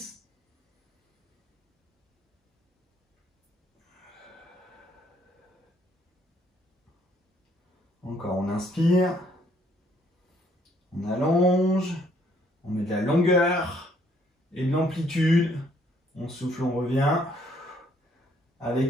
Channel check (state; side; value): normal; both; correlation 0.66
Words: Encore, on inspire, on allonge. On met de la longueur et de l'amplitude. On souffle, on revient.